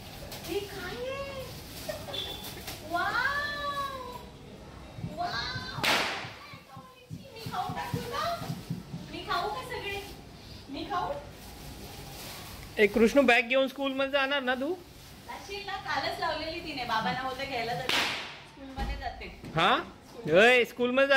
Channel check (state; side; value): identical; both; correlation 1.00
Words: हे काय आहे. Wow wow. मी खाऊ टाकू का. मी खाऊ का सगळे. मी खाऊ. एक कृष्ण बॅग घेऊन स्कूल मध्ये जाणार ना तू. जाशील ना. कालच लावलेली तिने. बाबांना होतं घ्यायला जाते. स्कूलमध्ये जाते. हा स्कूल मध्ये